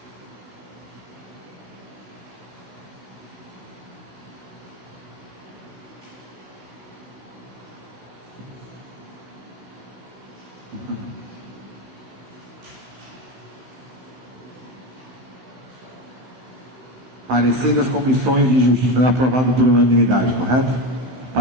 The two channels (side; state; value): left; late; 16 ms